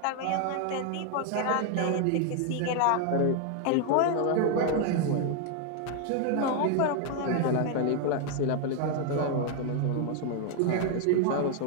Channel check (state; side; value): different; both; correlation 0.00